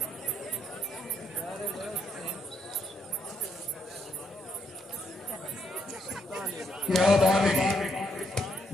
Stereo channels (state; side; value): normal; both; correlation 0.74